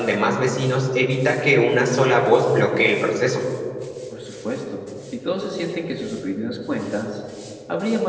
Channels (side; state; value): both; identical; correlation 1.00